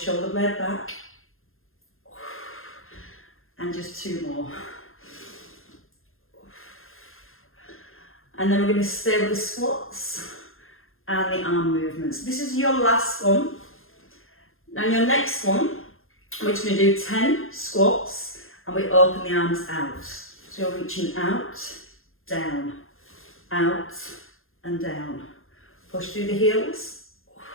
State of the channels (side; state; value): right; late; 0.60 ms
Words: blade back. And just 2 more. And then we're going to stay with the squats and the arm movements. This is your last one. Now your next one, we're just going to do 10 squats and we open the arms out. So you're reaching out, down, out and down. Push through the heels.